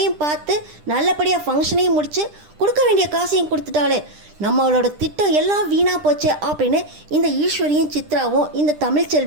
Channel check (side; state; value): left; late; 10 ms